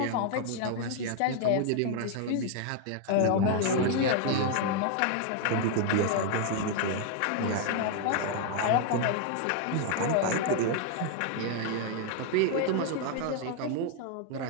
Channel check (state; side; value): different; both; correlation 0.00